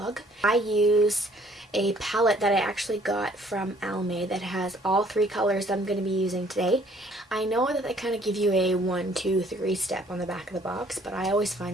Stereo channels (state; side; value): normal; both; correlation 0.60